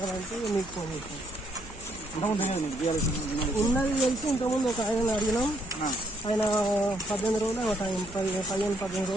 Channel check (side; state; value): left; noise; hum, 18 dB below the sound